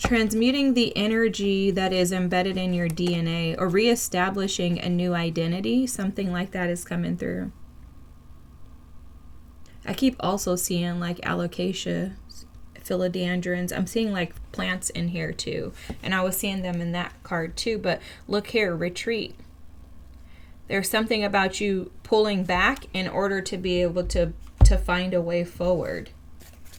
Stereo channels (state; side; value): identical; both; correlation 1.00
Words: the energy that is embedded in your DNA, or reestablishing a new identity. Something like that is coming through. I keep also seeing like alocasia, philodendrons. I'm seeing like plants in here too, and I was seeing them in that card too. But look here, retreat. There's something about you pulling back in order to be able to find a way forward.